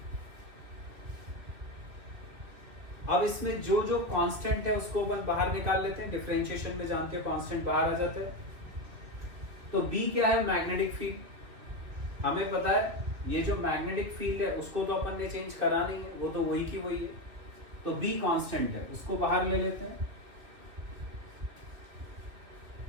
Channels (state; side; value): late; left; 2.9 ms